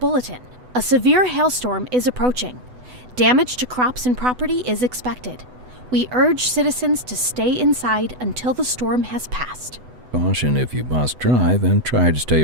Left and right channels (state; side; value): late; left; 8.0 ms